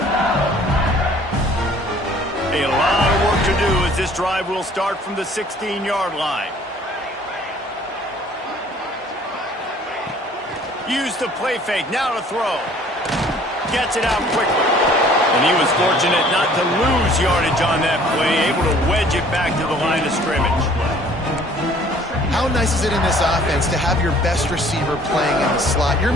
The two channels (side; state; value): both; normal; correlation 0.54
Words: A lot of work to do as this drive will start from the 16-yard line. Use the play fake, now to throw. Gets it out quickly. And he was fortunate not to lose yardage on that play, able to wedge it back to the line of scrimmage. How nice is it in this offense to have your best receiver playing in the slot? You're